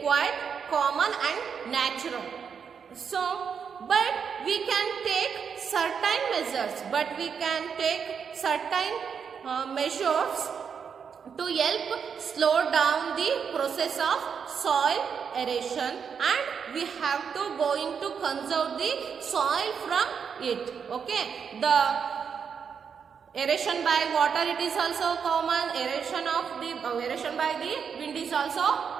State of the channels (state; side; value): quieter; left; 6.7 dB